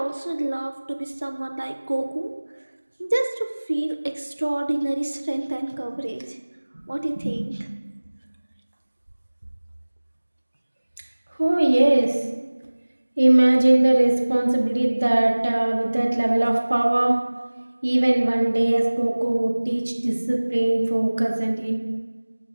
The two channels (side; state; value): both; inverted; correlation -1.00